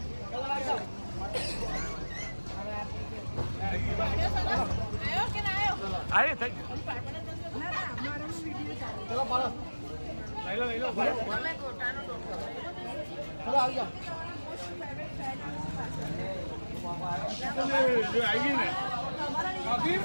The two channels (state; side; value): inverted; both; correlation -1.00